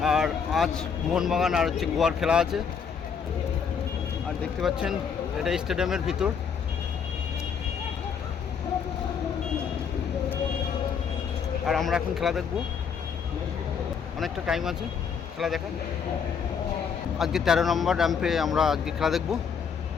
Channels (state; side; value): quieter; right; 6.6 dB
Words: আর আজ মোহনবাগান আর হচ্ছে গোয়ার খেলা আছে। আর দেখতে পাচ্ছেন এটা স্টেডিয়ামের ভিতর। আর আমরা এখন খেলা দেখব, অনেকটা টাইম আছে খেলা দেখার। আজকে 13 নম্বর র্যাম্পে আমরা আজকে খেলা দেখব।